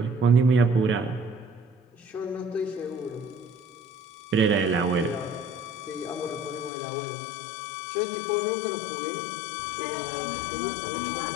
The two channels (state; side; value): drops out; right; at 6.7 s